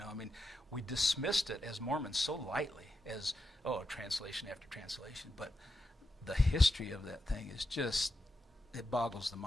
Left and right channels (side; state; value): both; normal; correlation 0.87